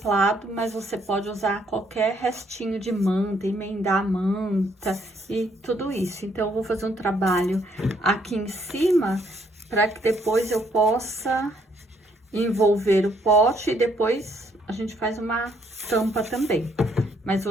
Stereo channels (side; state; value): both; normal; correlation 0.69